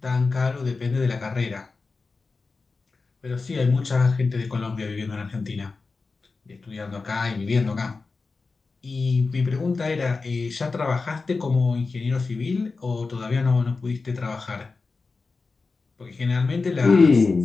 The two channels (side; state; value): right; quieter; 4.1 dB